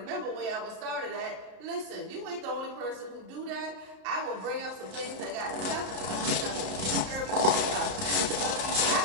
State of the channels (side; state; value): left; late; 32 ms